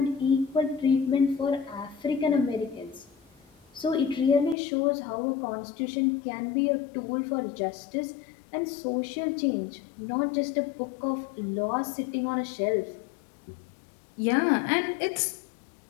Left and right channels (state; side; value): drops out; right; at 4.5 s